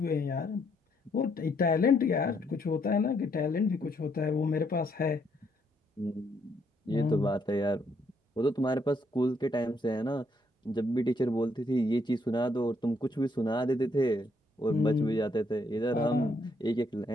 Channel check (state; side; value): normal; both; correlation 0.72